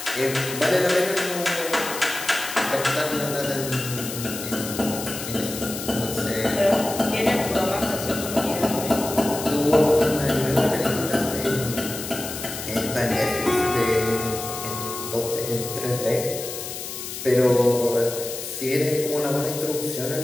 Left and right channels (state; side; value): noise; left; hiss, 8 dB below the sound